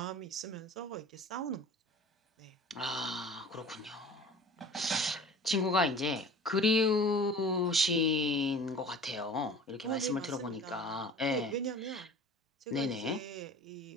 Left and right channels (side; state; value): both; normal; correlation 0.43